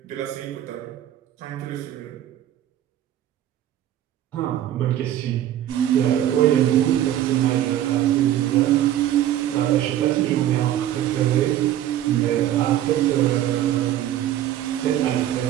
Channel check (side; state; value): left; quieter; 12.2 dB